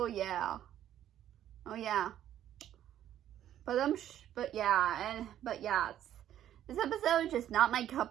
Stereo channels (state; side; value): quieter; left; 11.4 dB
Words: yeah. Oh yeah. But yeah, this episode is just not my